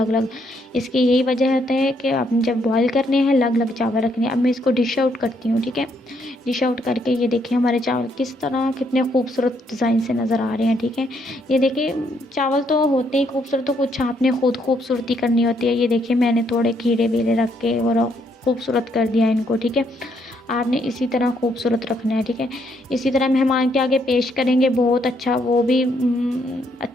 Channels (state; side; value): normal; both; correlation 0.72